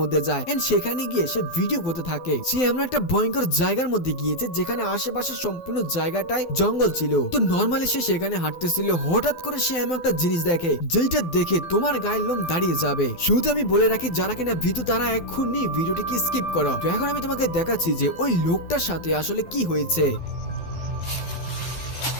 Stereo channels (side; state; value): right; late; 12 ms